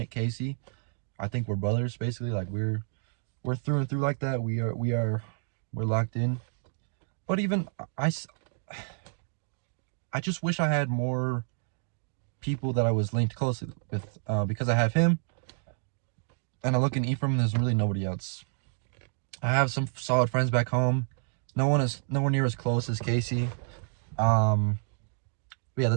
Casey. I think we're brothers, basically. Like we're through and through like that. We're locked in. But even I just wish I had more people that I was linked closely with, because I have him, and I look in Ephraim, there's really nobody else. I have some solid friends back home. No one is nowhere near as close as Casey. But yeah,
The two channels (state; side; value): silent; left; 58 dB below the other